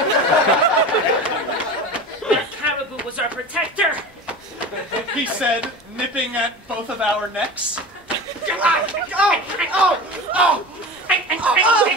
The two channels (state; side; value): normal; both; correlation 0.31